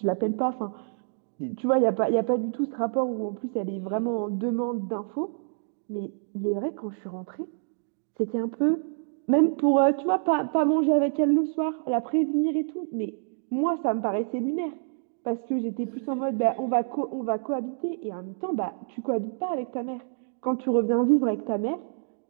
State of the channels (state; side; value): silent; left; digital silence